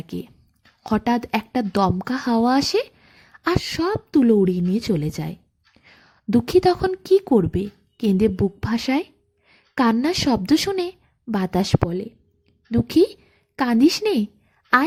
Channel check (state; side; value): identical; both; correlation 1.00